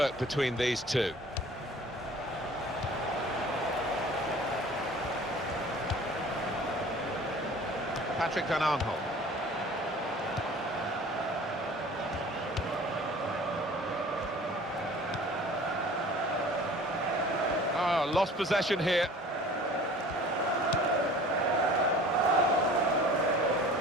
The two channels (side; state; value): both; normal; correlation 0.46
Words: between these two. Patrick Van Aanholt. Oh, lost possession here.